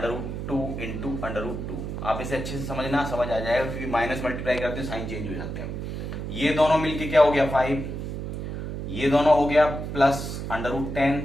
into √2। आप इसे अच्छे से समझना, समझ आ जाएगा, क्योंकि माइनस मल्टीप्लाई करते हैं साइन चेंज हो जाते हैं। ये दोनों मिलके क्या हो गया 5, ये दोनों हो गया प्लस √10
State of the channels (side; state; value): right; noise; hum, 5 dB below the sound